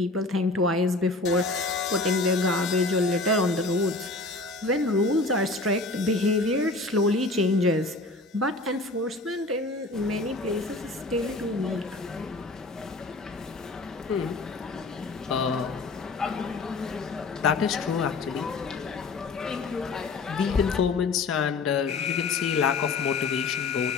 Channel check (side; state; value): right; quieter; 3.3 dB